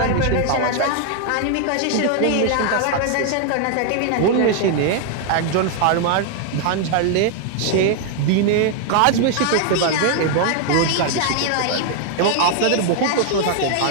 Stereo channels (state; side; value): different; both; correlation 0.00